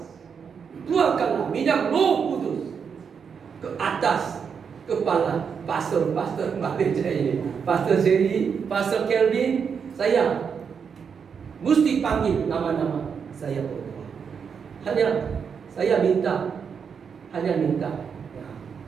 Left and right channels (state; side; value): quieter; left; 6.6 dB